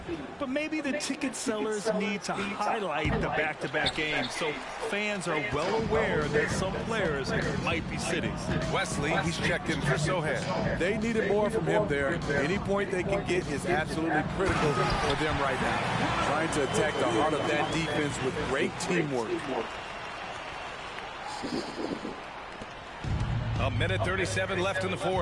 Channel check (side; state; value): both; identical; correlation 1.00